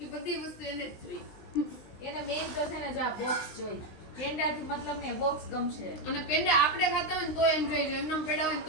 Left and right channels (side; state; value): right; late; 20 ms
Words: એ બધી વસ્તુ એને જ જોઈ. એને મેઈન તો છે ને જો આ બોક્સ જોઈ. પેંડાથી મતલબ ને બોક્સ ગમશે. અને પેંડા આપણે ખાતા હોય ને તો એમ જોઈ, એમને પેંડા હોય ને